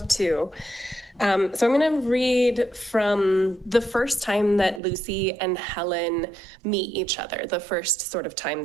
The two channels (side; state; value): left; drops out; at 4.8 s